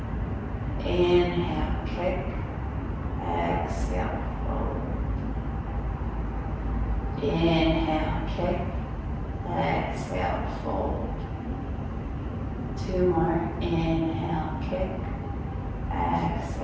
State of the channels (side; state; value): both; identical; correlation 1.00